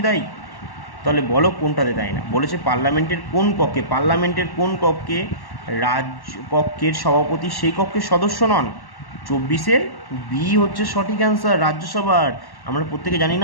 তাই? তাহলে বলো কোনটাতে তাই না? বলেছে পার্লামেন্টের কোন কক্ষে, পার্লামেন্টের কোন কক্ষে রাজ্য কক্ষের সভাপতি সেই কক্ষের সদস্য নন? 24-এর বি হচ্ছে সঠিক অ্যান্সার, রাজ্যসভার। আমরা প্রত্যেকে জানি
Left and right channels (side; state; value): right; late; 1.1 ms